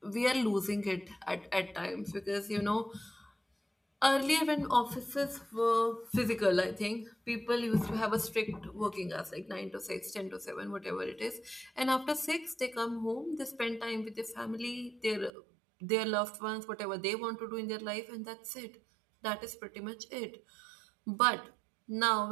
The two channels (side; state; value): left; drops out; at 15.3 s